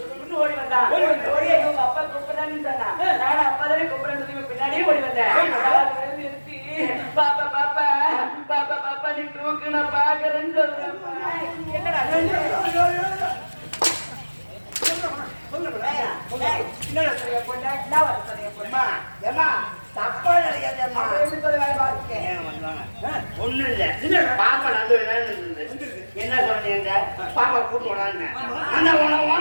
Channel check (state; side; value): inverted; both; correlation -1.00